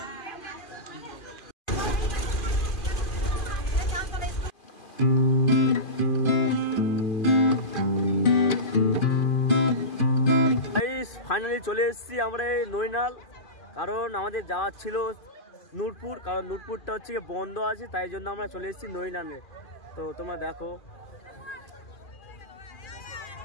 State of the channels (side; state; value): right; late; 2.4 ms